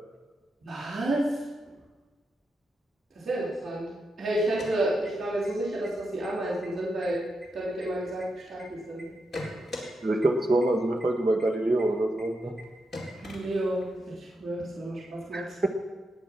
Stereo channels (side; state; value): both; normal; correlation 0.85